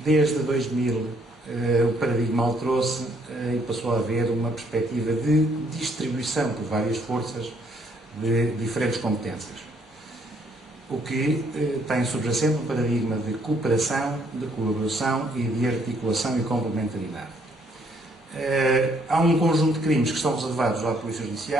2000 o paradigma alterou-se e passou a haver uma perspectiva de distribuição por várias forças de diferentes competências. O que tem subjacente um paradigma de cooperação, de colaboração e de articulação e complementaridade. Há um conjunto de crimes que estão reservados à Polícia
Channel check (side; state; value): both; normal; correlation 0.68